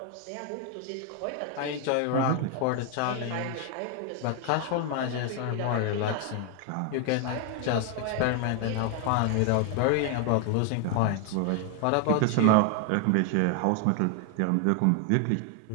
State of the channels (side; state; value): both; different; correlation 0.01